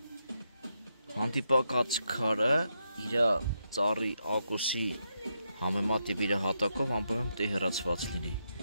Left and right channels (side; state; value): both; inverted; correlation -0.82